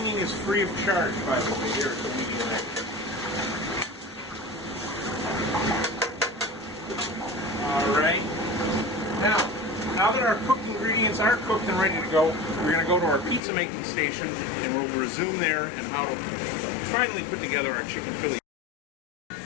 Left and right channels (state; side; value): drops out; right; at 13.4 s